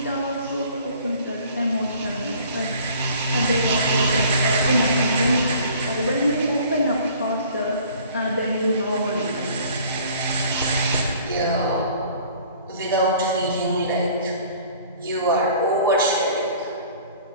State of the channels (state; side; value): inverted; both; correlation -0.52